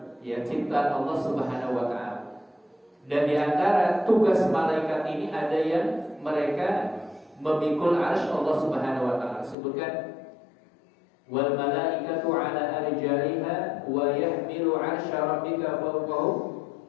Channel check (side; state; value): right; drops out; at 9.6 s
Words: ya, ciptaan Allah Subhanahu wa taala. Dan di antara tugas malaikat ini ada yang mereka memikul arsy Allah Subhanahu wa taala. Sebutkan wal malaikatu ala arjaiha wa yahmilu arsya rabbika fawqahum